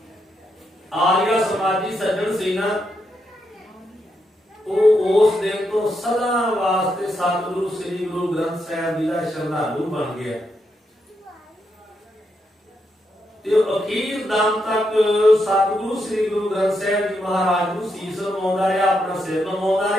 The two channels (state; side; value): normal; both; correlation 0.81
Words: ਆਰੀਆ ਸਮਾਜੀ ਸੱਜਣ ਸੀ ਨਾ, ਉਹ ਉਸ ਦਿਨ ਤੋਂ ਸਦਾ ਵਾਸਤੇ ਸਤਿਗੁਰੂ ਸ੍ਰੀ ਗੁਰੂ ਗ੍ਰੰਥ ਸਾਹਿਬ ਜੀ ਦਾ ਸ਼ਰਧਾਲੂ ਬਣ ਗਿਆ। ਤੇ ਅਖੀਰ ਦਮ ਤੱਕ ਸਤਿਗੁਰੂ ਸ੍ਰੀ ਗੁਰੂ ਗ੍ਰੰਥ ਸਾਹਿਬ ਜੀ ਮਹਾਰਾਜ ਨੂੰ ਸੀਸ ਨਵਾਉਂਦਾ ਰਿਹਾ, ਆਪਣਾ ਸਿਰ ਨਵਾਉਂਦਾ